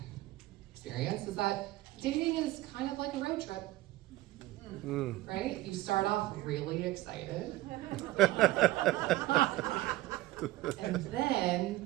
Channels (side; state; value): left; quieter; 17.5 dB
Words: experience is that dating is kind of like a road trip, right? You start off really excited, and